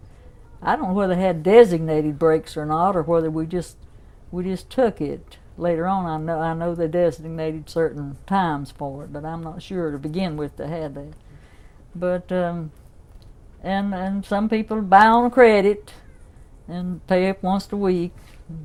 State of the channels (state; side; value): identical; both; correlation 1.00